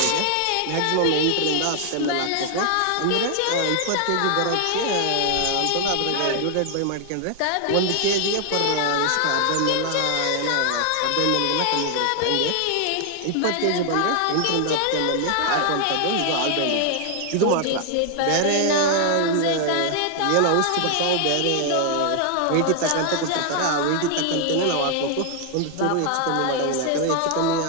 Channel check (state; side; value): different; both; correlation 0.00